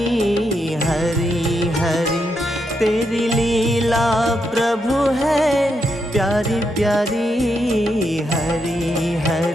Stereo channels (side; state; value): both; normal; correlation 0.81